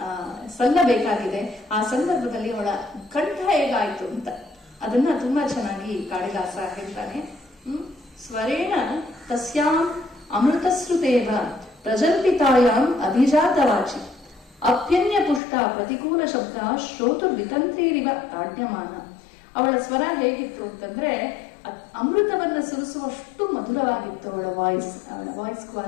ಸಲ್ಲಬೇಕಾಗಿದೆ. ಆ ಸಂದರ್ಭದಲ್ಲಿ ಅವಳ ಕಂಠ ಹೇಗಾಯ್ತು ಅಂತ ಅದನ್ನ ತುಂಬಾ ಚೆನ್ನಾಗಿ ಕಾಳಿದಾಸ ಹೇಳ್ತಾನೆ. ಸ್ವರೇಣ ತಸ್ಯಾಂ ಅಮೃತಶ್ರುತೇವ ಪ್ರಜಲ್ಪಿತಾಯಾಂ ಅಭಿಜಾತವಾಚಿ ಅಪ್ಯನ್ಯ ಪುಷ್ಟ ಪ್ರತಿಕೂಲ ಶಬ್ದ ಶ್ರೋತುರ್ವಿತಂತ್ರೀರಿವ ತಾಡ್ಯಮಾನ. ಅವಳ ಸ್ವರ ಹೇಗಿತ್ತು ಅಂತಂದ್ರೆ ಅಮೃತವನ್ನ ಸುರಿಸುವಷ್ಟು ಮಧುರವಾಗಿತ್ತು ಅವಳ ವಾಯ್ಸ್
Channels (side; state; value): right; drops out; at 15.4 s